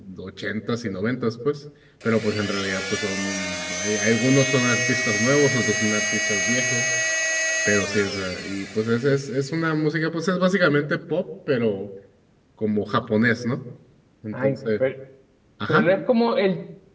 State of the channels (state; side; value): identical; both; correlation 1.00